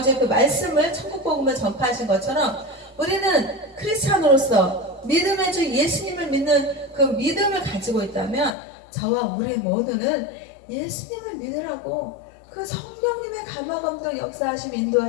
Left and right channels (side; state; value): right; drops out; at 8.5 s